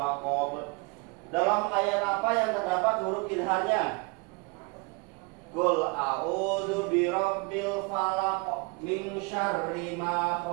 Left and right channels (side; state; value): left; quieter; 29.8 dB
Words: Dalam ayat apa yang terdapat huruf idharnya? Qul a'udzu birabbil falaq min syarri ma